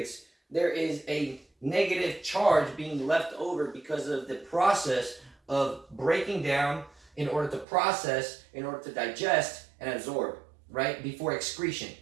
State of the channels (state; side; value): drops out; left; at 7.7 s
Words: there is a negative charge being left over because of the process of breaking down in order to process, in order to digest and absorb, right? Before excretion.